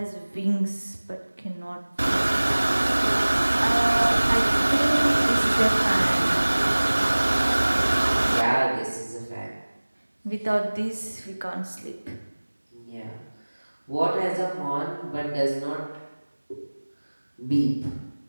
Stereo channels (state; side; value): inverted; both; correlation -1.00